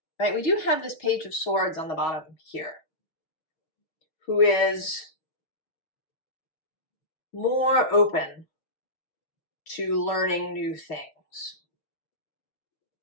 right, we do have this Page of Swords on the bottom here, who is more open to learning new things,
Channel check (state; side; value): late; right; 6.4 ms